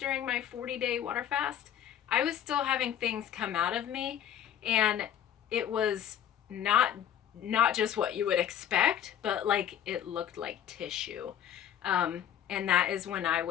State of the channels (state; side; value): quieter; right; 10.1 dB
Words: my 40-day water fast, I was still having things come out of me, and it was not just what you would expect, but like it looked like tissue. And that is when I